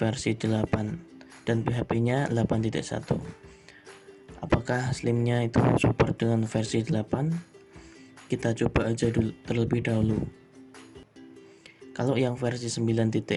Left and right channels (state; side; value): identical; both; correlation 1.00